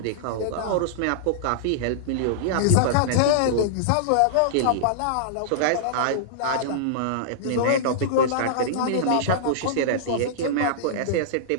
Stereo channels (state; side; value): different; both; correlation -0.02